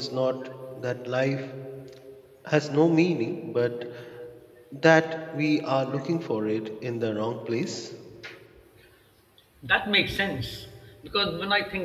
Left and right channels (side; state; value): both; identical; correlation 1.00